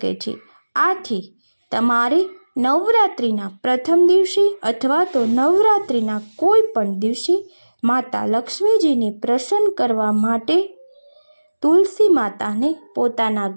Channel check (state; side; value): inverted; both; correlation -1.00